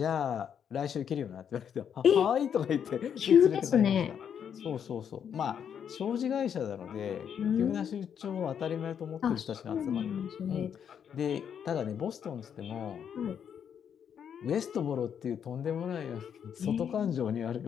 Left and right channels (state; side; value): quieter; right; 8.2 dB